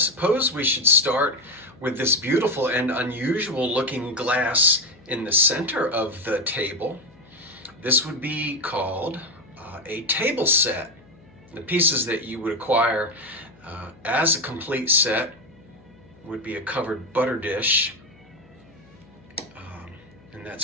we should start with this beautiful and unusual looking glass in the center of the table. This would be called a table set. The pieces that you would acquire as a complete set would be a covered butter dish, and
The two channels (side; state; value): left; noise; hum, 26 dB below the sound